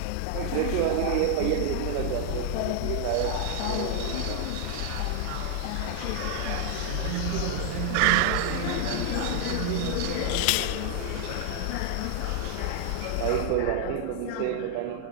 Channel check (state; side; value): different; both; correlation 0.00